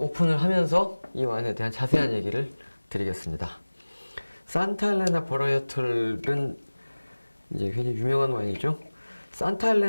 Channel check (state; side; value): inverted; both; correlation -1.00